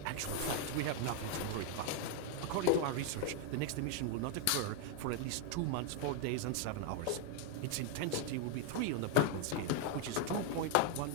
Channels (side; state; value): both; different; correlation 0.00